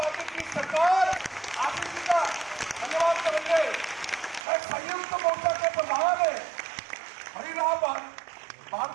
की सरकार आशीष जी का धन्यवाद करेंगे। मैं संयुक्त मोर्चा के प्रधान है हरिराम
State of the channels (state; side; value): drops out; left; at 4.4 s